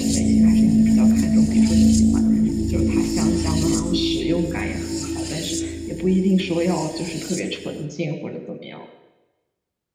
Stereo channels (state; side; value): identical; both; correlation 1.00